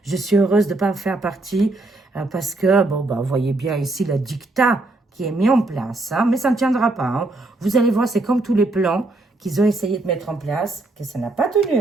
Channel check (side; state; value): left; quieter; 3.0 dB